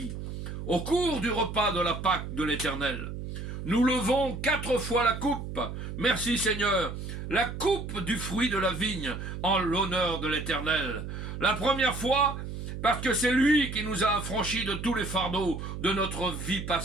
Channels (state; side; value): noise; right; hum, 7 dB below the sound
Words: Au cours du repas de la Pâque de l'Éternel, nous levons 4 fois la coupe. Merci Seigneur. La coupe du fruit de la vigne en l'honneur de l'Éternel. La première fois, parce que c'est lui qui nous a affranchis de tous les fardeaux de notre vie